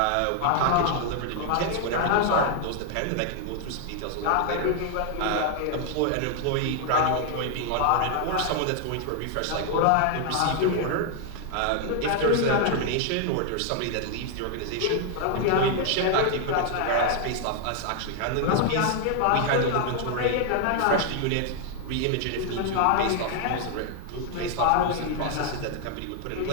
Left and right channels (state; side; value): different; both; correlation 0.00